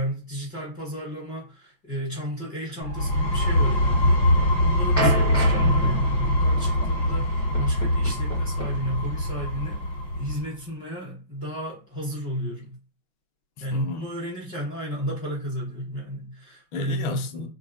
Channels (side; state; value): right; late; 5.4 ms